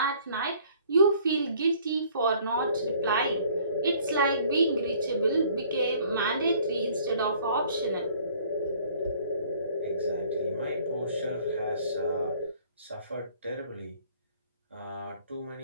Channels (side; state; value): both; inverted; correlation -0.56